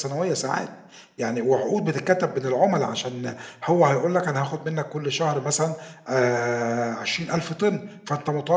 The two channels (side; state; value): both; identical; correlation 1.00